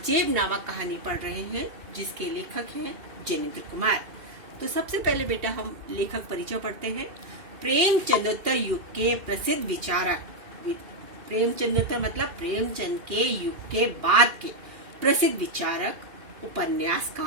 नामक कहानी पढ़ रहे हैं, जिसके लेखक हैं जैनेन्द्र कुमार। तो सबसे पहले बेटा हम लेखक परिचय पढ़ते हैं। प्रेमचंदोत्तर युग के प्रसिद्ध विचारक, प्रेमचंदोत्तर मतलब प्रेमचंद के युग के बाद के प्रसिद्ध विचारक,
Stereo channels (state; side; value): late; left; 2.9 ms